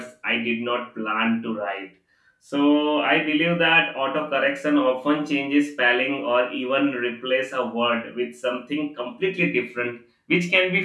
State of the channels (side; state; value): both; identical; correlation 1.00